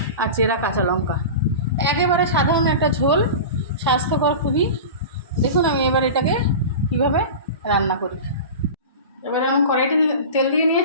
আর চেরা কাঁচা লঙ্কা। একেবারে সাধারণ একটা ঝোল, স্বাস্থ্যকর খুবই। দেখুন আমি এবার এটাকে কীভাবে রান্না করি। এবারে আমি কড়াইতে তেল দিয়ে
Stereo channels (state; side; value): inverted; both; correlation -0.30